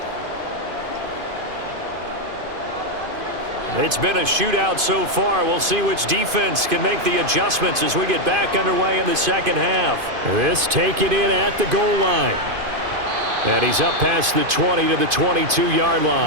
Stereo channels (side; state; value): left; late; 2.5 ms